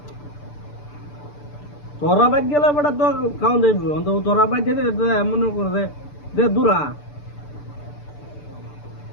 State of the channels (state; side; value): late; right; 6.8 ms